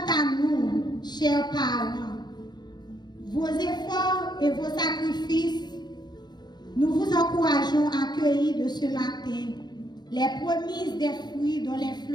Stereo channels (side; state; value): right; late; 0.20 ms